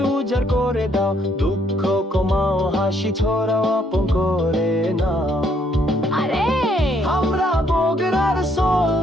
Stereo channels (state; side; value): normal; both; correlation 0.69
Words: উজাড় করে দাও, দুঃখ কমাও, হাসি ছড়াও, আপন করে নাও। আরে আমরা বগরার সোল,